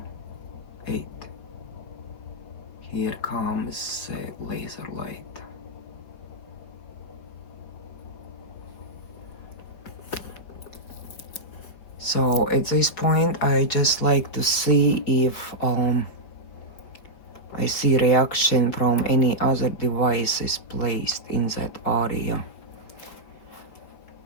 8. Here comes a laser light. So at this point I just like to see if I see reaction from any other devices placed in that area.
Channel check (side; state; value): right; late; 5.1 ms